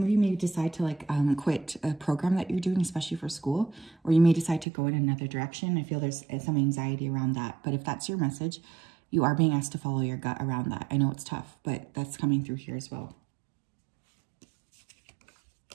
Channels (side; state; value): left; drops out; at 4.7 s